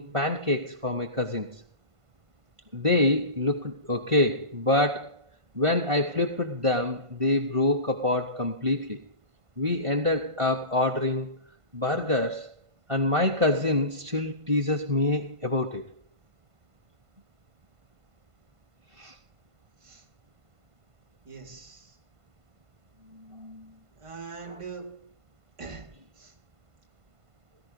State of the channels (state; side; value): late; left; 1.5 ms